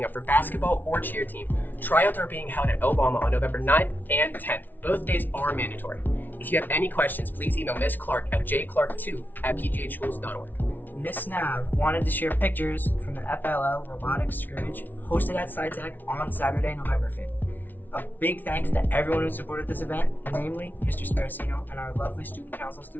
up for basketball or cheer team, tryouts are being held at Obama on November 9th and 10th. Both days are mandatory. If you have any questions, please email Miss Clark at jclark2@pghschools.org. Miss Nav wanted to share pictures from the FLL robotics scrimmage hosted at SciTech on Saturday, November 5th. A big thanks to everyone who supported this event, namely Mr. Sparacino and our lovely student council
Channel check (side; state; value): right; late; 0.086 ms